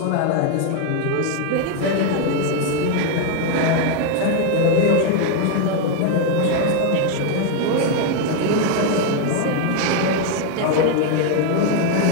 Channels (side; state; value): both; different; correlation 0.01